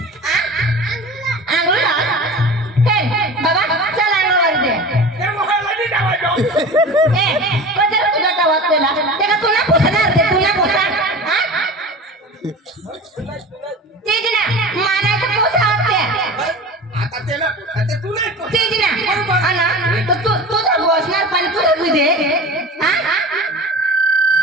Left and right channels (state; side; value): normal; both; correlation 0.34